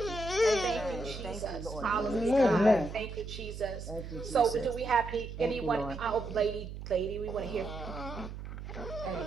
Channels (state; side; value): noise; right; hum, 9 dB below the sound